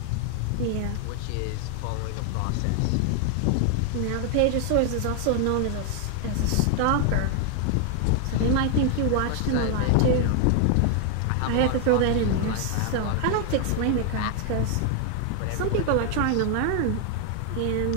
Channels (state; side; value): different; both; correlation 0.01